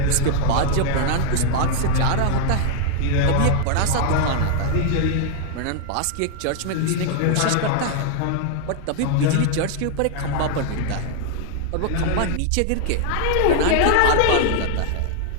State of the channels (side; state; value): both; different; correlation 0.00